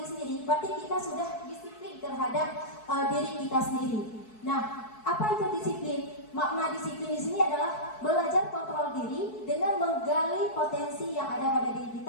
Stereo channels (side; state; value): right; late; 4.6 ms